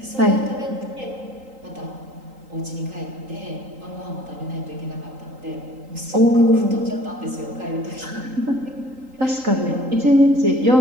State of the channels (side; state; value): left; late; 3.8 ms